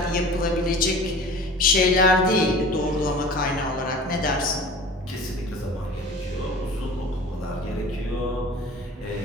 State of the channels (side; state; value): both; normal; correlation 0.41